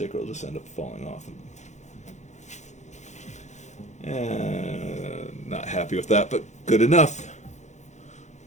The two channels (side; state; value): right; late; 0.34 ms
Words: will just end up falling off. Not happy with that, but good enough.